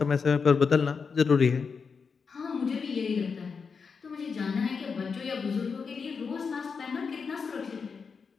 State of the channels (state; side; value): quieter; right; 5.5 dB